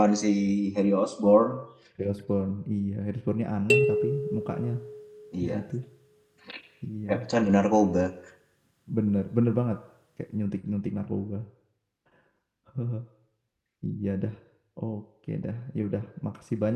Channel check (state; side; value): identical; both; correlation 1.00